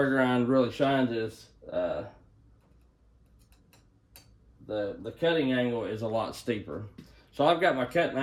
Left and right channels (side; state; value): both; identical; correlation 1.00